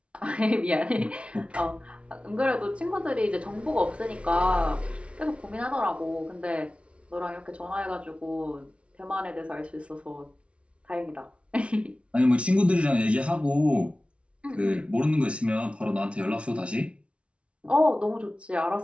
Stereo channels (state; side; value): late; left; 0.060 ms